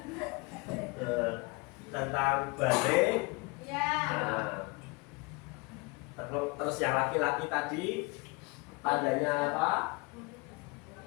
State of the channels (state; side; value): quieter; right; 28.0 dB